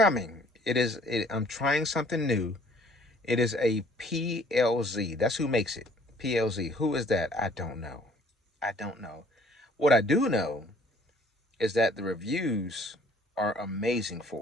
I'm trying something new. It is a PLZ. That's who makes it. PLZ. Who is that? I don't know. What I do know is that the reviews are amazing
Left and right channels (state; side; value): normal; both; correlation 0.57